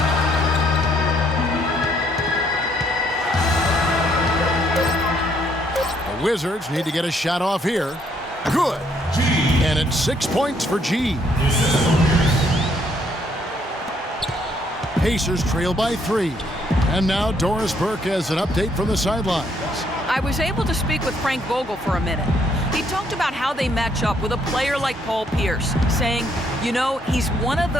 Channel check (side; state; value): both; normal; correlation 0.69